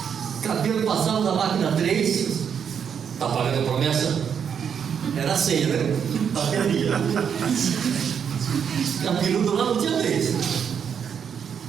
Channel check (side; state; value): left; quieter; 7.6 dB